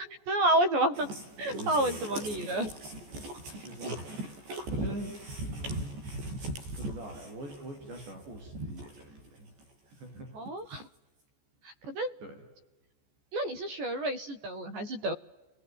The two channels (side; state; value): left; late; 14 ms